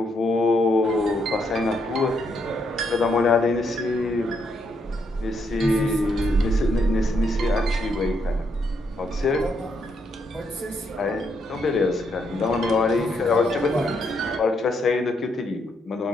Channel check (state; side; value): normal; both; correlation 0.76